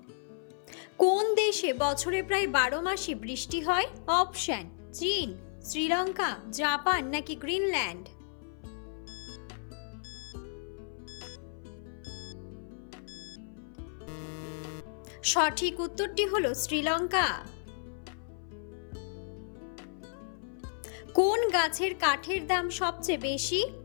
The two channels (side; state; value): right; silent; 56 dB below the other